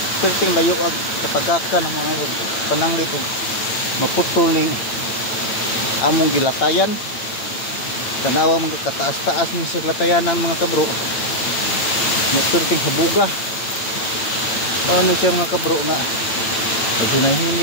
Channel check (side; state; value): right; late; 8.9 ms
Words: Perting layo ag katagakan ang mga pananglit ug maputol ning among gilatayan. Tanawa mga kataas-taas ni sa latayanan mga kabro. Perting habuga. Paano siya mga kabro nga